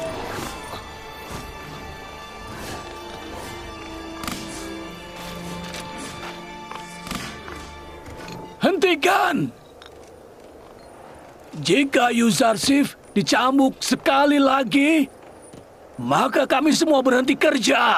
Hentikan! Jika Yuzarsif dicambuk sekali lagi, maka kami semua berhenti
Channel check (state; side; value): identical; both; correlation 1.00